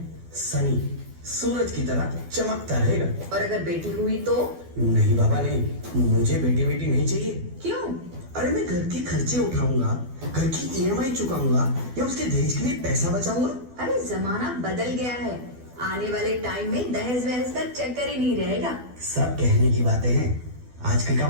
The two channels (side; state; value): left; late; 12 ms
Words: सनी। सूरज की तरह चमकता रहेगा। और अगर बेटी हुई तो? नहीं बाबा नहीं, मुझे बेटी बेटी नहीं चाहिए। क्यों? अरे मैं घर के खर्चे उठाऊंगा, घर की ईएमआई चुकाऊंगा या उसके दहेज के लिए पैसा बचाऊंगा। अरे जमाना बदल गया है, आने वाले टाइम में दहेज वहेज का चक्कर ही नहीं रहेगा। सब कहने की बातें हैं, आजकल का